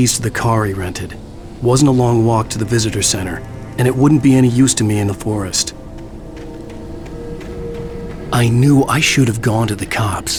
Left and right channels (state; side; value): identical; both; correlation 1.00